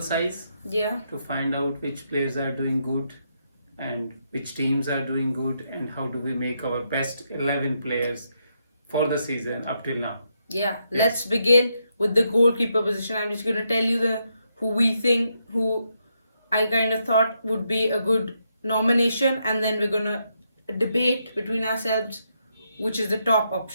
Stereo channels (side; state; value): both; inverted; correlation -0.80